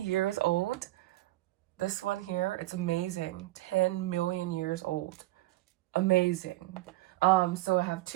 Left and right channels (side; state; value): left; quieter; 17.8 dB